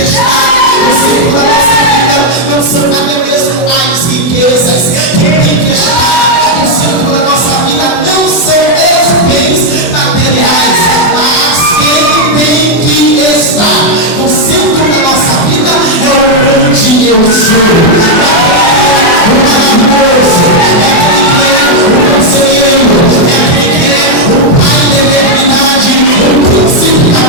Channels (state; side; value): late; right; 24 ms